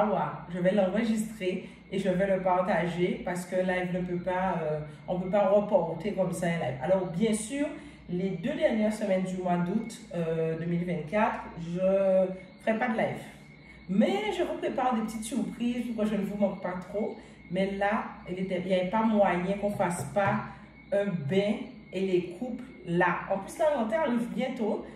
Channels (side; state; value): both; identical; correlation 1.00